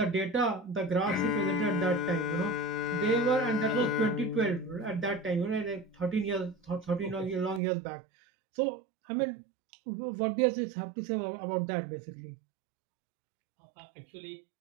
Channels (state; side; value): drops out; left; at 7.6 s